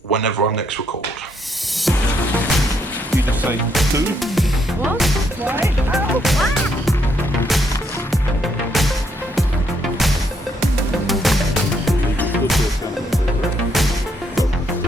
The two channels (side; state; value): both; normal; correlation 0.73